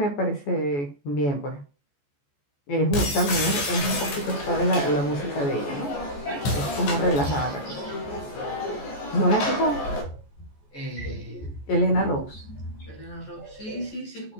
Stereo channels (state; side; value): late; right; 14 ms